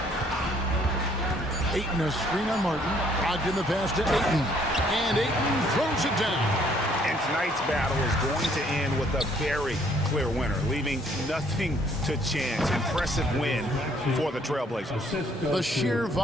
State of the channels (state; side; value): normal; both; correlation 0.64